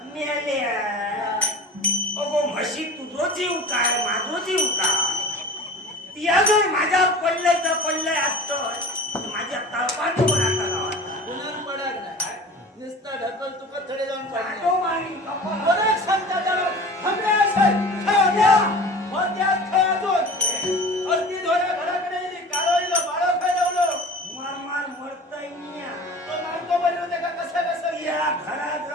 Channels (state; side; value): normal; both; correlation 0.38